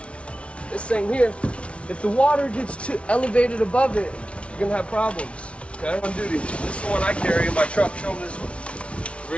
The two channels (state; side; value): late; right; 0.061 ms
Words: this thing here, if the water gets too elevated above it, you're gonna have problems. Okay? On duty. This is the one I carry in my truck. Show them this